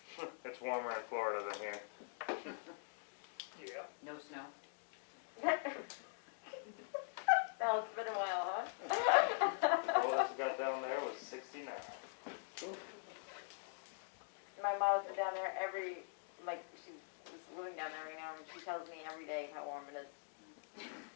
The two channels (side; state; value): right; silent; digital silence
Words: It's warmer in Florida than here. Yeah. No snow. Oh, it's been a while, huh? Oldest we got down there was 69. My mom's been down there she's living down there right now, and she tells me every day how warm it is.